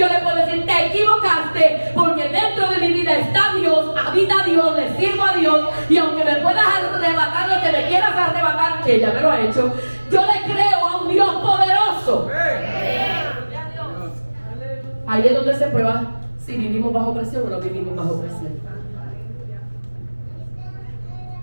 le puedo decir, te equivocaste, porque dentro de mi vida está Dios, habita Dios, le sirvo a Dios, y aunque me puedas arrebatar lo que me quieras arrebatar, que ya me lo ha hecho, yo le creo a un Dios poderoso. Ahí es donde se prueba si vivimos bajo presión o no vivimos bajo presión.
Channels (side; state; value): both; inverted; correlation -1.00